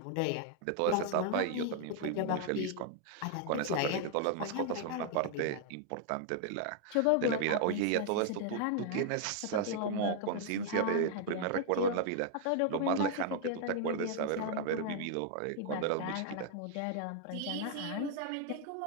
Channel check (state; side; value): different; both; correlation 0.00